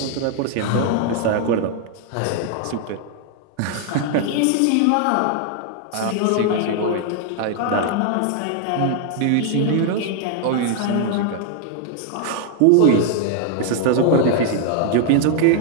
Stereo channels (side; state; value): both; different; correlation 0.00